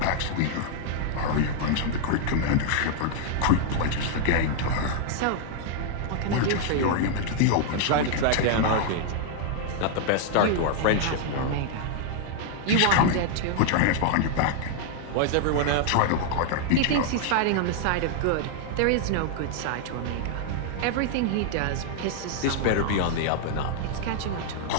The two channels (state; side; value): different; both; correlation -0.01